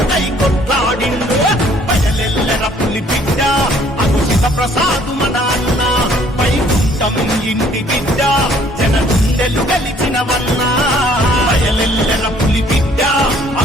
కొట్లాడిండు బయలెల్లెర పులి బిడ్డ అగు శివ ప్రసాదు మన అన్న ఇంటి బిడ్డ జన గుండెలు గెలిచినవన్నా బయలెల్లెర పులి బిడ్డ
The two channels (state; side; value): normal; both; correlation 0.60